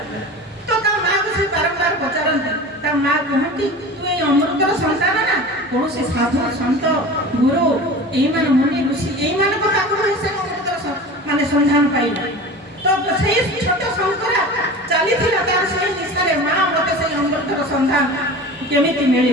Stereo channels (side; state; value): both; normal; correlation 0.35